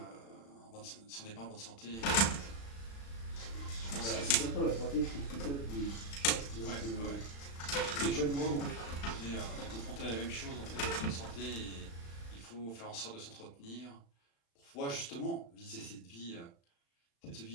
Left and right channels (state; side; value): late; right; 35 ms